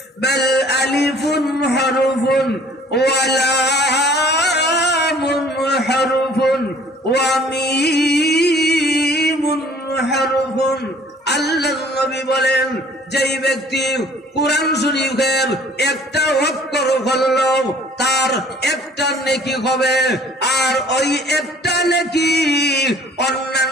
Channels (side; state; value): both; normal; correlation 0.54